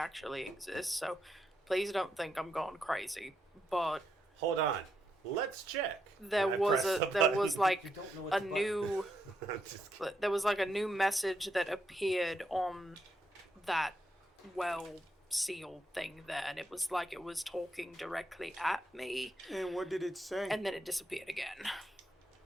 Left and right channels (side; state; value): both; normal; correlation 0.80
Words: exists, so please don't think I'm going crazy. But Hold on. Let's check. there And I was press the there was button. like You don't know what a the button- new I'm just kidding. there was like a new message that appeared on that sealed thing there, and it was like it was talking directly at me, And what did it say? and then it disappeared again.